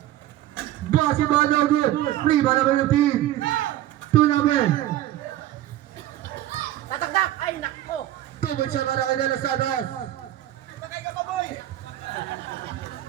Basket ba no good? Rebound number 15. 2 number. Tatagdak! Ay, nako! 2 points siya para kay De Los Santos.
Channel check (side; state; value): left; quieter; 13.7 dB